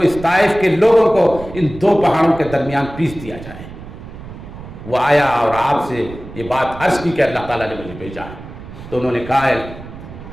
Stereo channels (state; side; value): noise; right; rumble, 14 dB below the sound